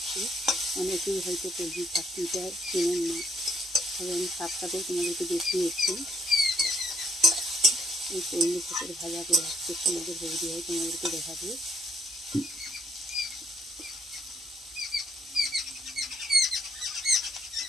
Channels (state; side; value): normal; both; correlation 0.68